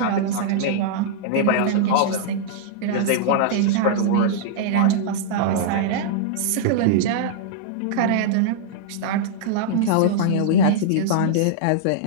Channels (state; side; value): different; both; correlation -0.02